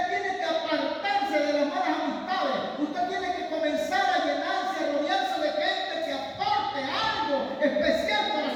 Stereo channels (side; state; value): both; identical; correlation 1.00